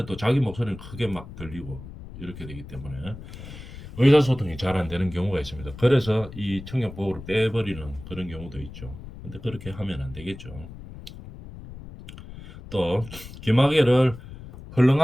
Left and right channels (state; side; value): noise; left; rumble, 14 dB below the sound